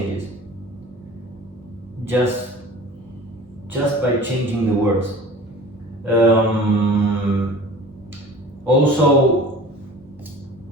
Just by changing the words.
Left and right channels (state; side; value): normal; both; correlation 0.41